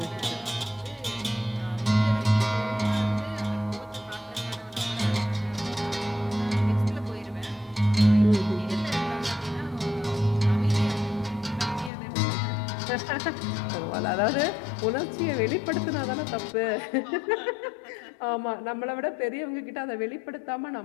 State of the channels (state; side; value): drops out; right; at 11.9 s